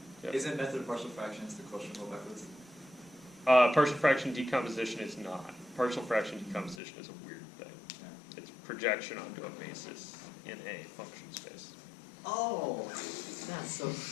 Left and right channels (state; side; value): drops out; right; at 6.8 s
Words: Yep. Isn't method of partial fractions the quotient rule backwards? Partial fraction decomposition is not. Partial fraction decomposition is a weird thing. It's projection onto a basis in a function space. Oh, that's so